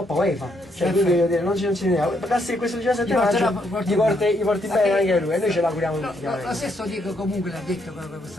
UEFA. Cioè, quindi voglio dire, non ci teniamo. Basta che questo 17 maggio gli porti bene anche lui, e noi ce l'auguriamo tutti. Lo stesso Diego comunque l'ha detto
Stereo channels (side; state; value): both; normal; correlation 0.74